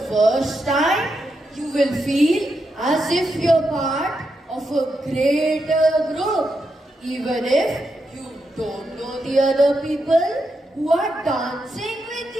first time, you will feel as if you're part of a greater group, even if you don't know the other people who are dancing with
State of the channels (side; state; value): both; normal; correlation 0.84